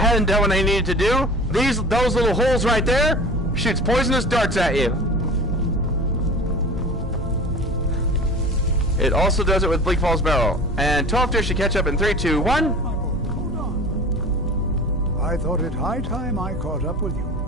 done what I needed to do, those little holes right there shoots poisonous darts at you. It also does it with Bleak Falls Barrel. And 12 Deer should catch up in 3, 2, 1. Hold on. I thought it high time I caught up with you.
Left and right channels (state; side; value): normal; both; correlation 0.39